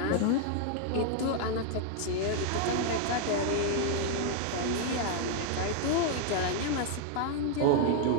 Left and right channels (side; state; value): both; different; correlation 0.00